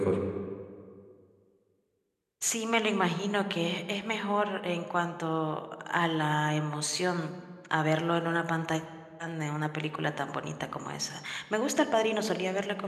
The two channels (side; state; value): both; identical; correlation 1.00